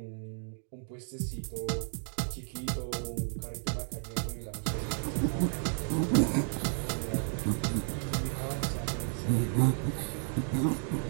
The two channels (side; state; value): left; silent; 56 dB below the other